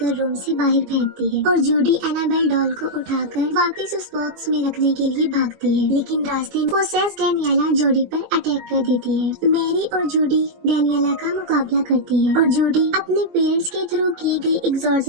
रूम से बाहर फेंकती है और जूडी एनाबेल डॉल को उठाकर वापस उस बॉक्स में रखने के लिए भागती है। लेकिन रास्ते में पोसेस डेनियला जूडी पर अटैक कर देती है। मैरी और जूडी डेनियला का मुकाबला करती है और जूडी अपने पेरेंट्स के थ्रू की गई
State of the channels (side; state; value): left; late; 20 ms